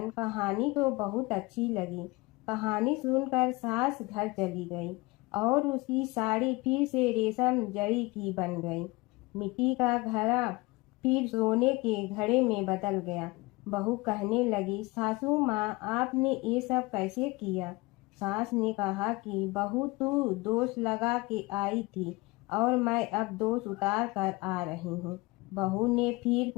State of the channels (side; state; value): right; quieter; 23.2 dB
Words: कहानी तो बहुत अच्छी लगी। कहानी सुनकर सास घर चली गई और उसकी साड़ी फिर से रेशम जड़ी की बन गई। मिट्टी का घड़ा फिर सोने के घड़े में बदल गया। बहू कहने लगी, सासू माँ, आपने ये सब कैसे किया? सास ने कहा कि बहू, तू दोष लगा के आई थी और मैं अब दोष उतार कर आ रही हूँ। बहू ने फिर